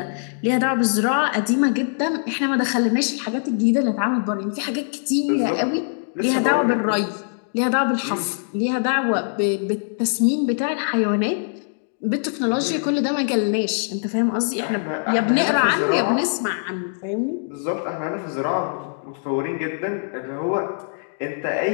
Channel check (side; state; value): right; silent; digital silence